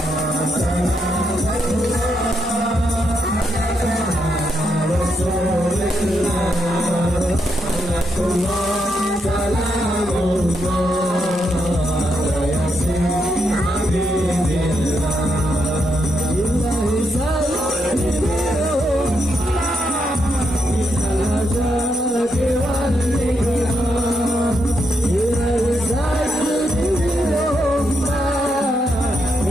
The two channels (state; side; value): normal; both; correlation 0.80